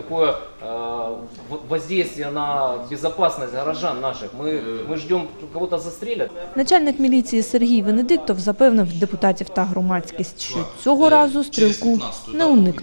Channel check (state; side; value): inverted; both; correlation -1.00